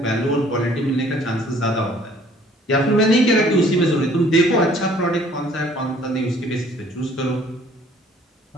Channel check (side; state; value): both; normal; correlation 0.57